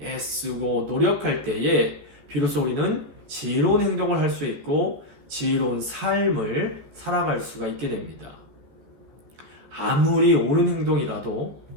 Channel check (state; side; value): late; left; 14 ms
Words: 노력할 때에 비로소 우리는 지혜로운 행동을 할 수 있고 지혜로운 삶을 살아갈 수가 있게 됩니다. 아무리 옳은 행동이라도